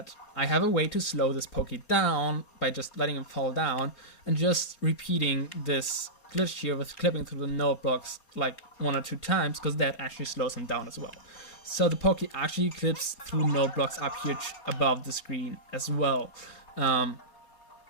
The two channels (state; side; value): late; right; 4.3 ms